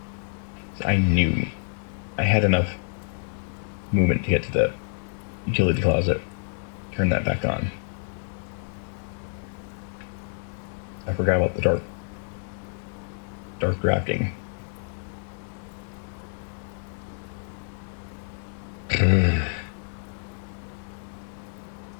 I knew I had enough movement to get to the utility closet, turn that back on. I forgot about the dark drafting.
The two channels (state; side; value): silent; right; digital silence